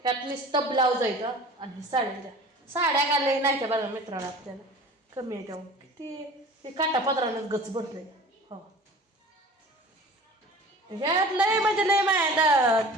त्यात नुसतं ब्लाऊज आहे का आणि साड्या घालले नाही त्या बघा मित्राला आपल्याला कमी आहे त्यामुळे किती ते काटापत्रानं गच भरलंय हो ह्यात लय म्हणजे लय माया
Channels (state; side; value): normal; both; correlation 0.41